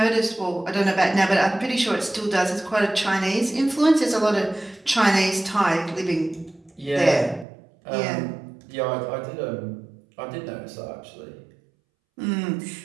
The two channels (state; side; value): drops out; left; at 7.5 s